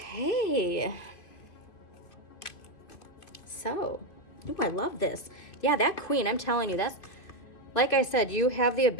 So, ooh, I love this. Yeah, that queen, I'm telling you, that's, like I said, you have the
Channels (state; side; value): late; right; 2.5 ms